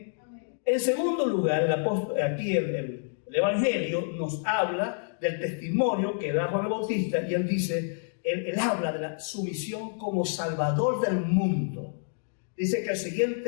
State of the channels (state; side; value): silent; right; digital silence